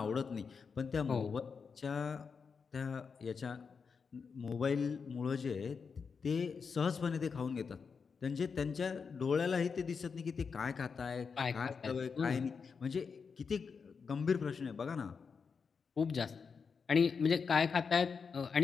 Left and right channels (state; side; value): quieter; right; 5.6 dB